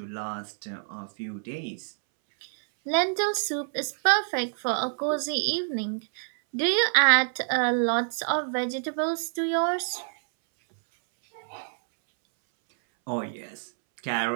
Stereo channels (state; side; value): silent; left; 60 dB below the other